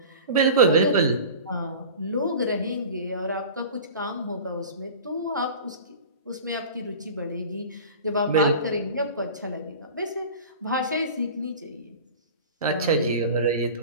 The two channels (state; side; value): inverted; both; correlation -0.37